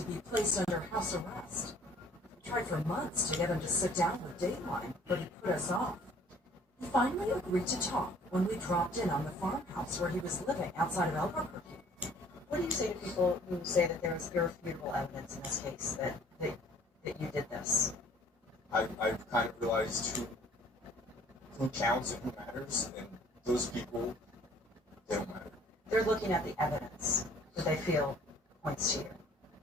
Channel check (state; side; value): normal; both; correlation 0.55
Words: be placed under house arrest. We tried for months to get him to sit down with Dateline, but he put us off. He finally agreed to talk when we dropped in on the farmhouse where he was living outside of Albuquerque. What do you say to people who say that there was irrefutable evidence in this case that you did this? I've kind of realized who counts and who matters, and those people, they don't matter. They're looking at the evidence that they feel points to